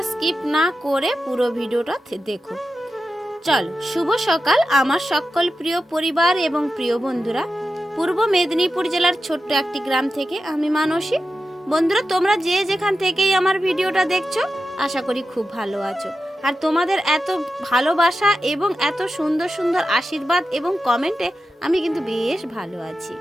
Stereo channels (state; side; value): normal; both; correlation 0.91